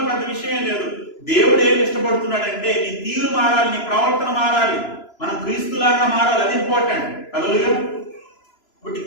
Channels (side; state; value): right; late; 2.9 ms